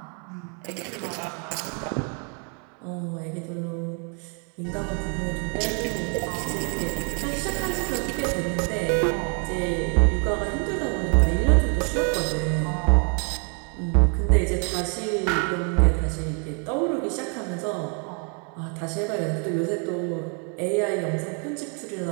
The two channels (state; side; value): quieter; left; 38.1 dB